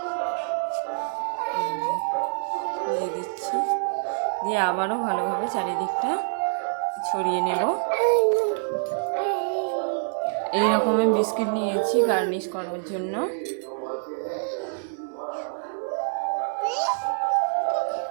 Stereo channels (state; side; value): silent; left; digital silence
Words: দিয়ে দিচ্ছি। দিয়ে আবারও ভালোভাবে চারিদিকটা ছড়িয়ে নেব। এইরকম আমি বিস্কিট নিয়েছি গার্নিশ করার জন্য।